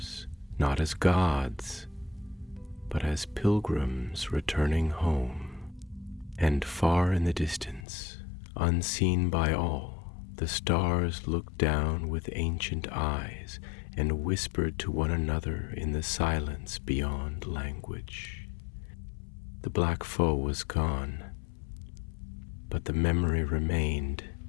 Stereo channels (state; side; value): drops out; right; at 7.9 s